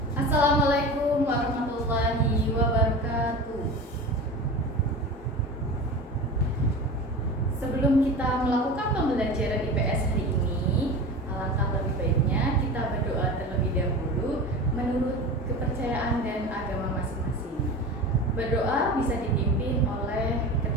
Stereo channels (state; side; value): normal; both; correlation 0.31